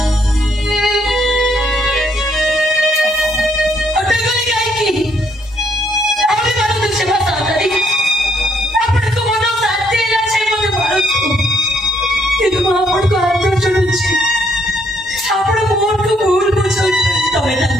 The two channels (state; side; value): normal; both; correlation 0.70